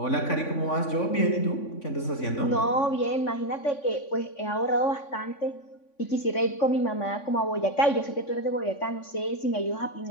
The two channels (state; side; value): late; right; 3.5 ms